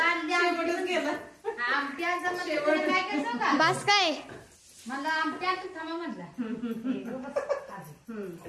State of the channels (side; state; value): both; identical; correlation 1.00